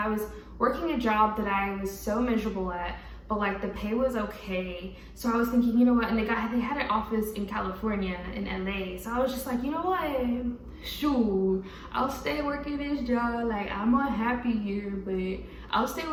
was working a job that I was so miserable at, but like the pay was okay. So I was thinking, you know what, and they had an office in California, in LA. So I was just like, you know what, shoot, I'll stay working this job. Like I'm unhappy here, but I'll stay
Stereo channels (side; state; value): both; identical; correlation 1.00